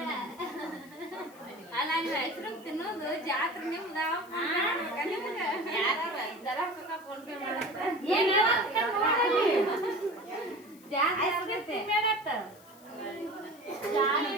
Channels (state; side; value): noise; left; hiss, 25 dB below the sound